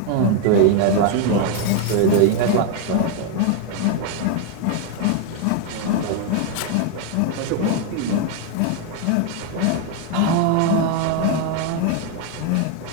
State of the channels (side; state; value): both; different; correlation 0.01